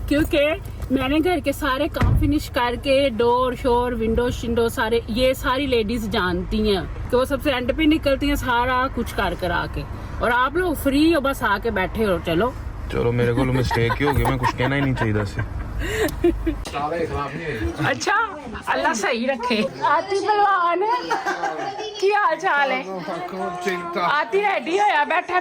क्योंकि मैंने घर के सारे काम फिनिश करके डोर शोर विंडो शिंडो सारे ये सारी लेडीज जानती हैं कि वो सबसे एंड पे निकलती हैं सारा कुछ कर आके। और आप लोग फ्री हो, बस आके बैठे हो। चलो चलो मेरे को मिस्टेक ही हो गई, मैं कुछ कहना ही नहीं चाहिए से। अच्छा अल्लाह सही रखे। आती पहलवान की हाल चाल है? आती रेडी होया बैठा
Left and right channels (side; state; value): both; identical; correlation 1.00